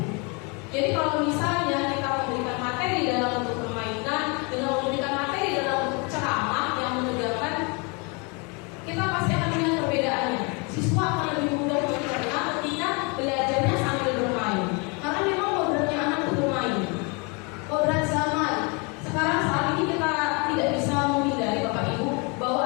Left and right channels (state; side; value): quieter; right; 31.4 dB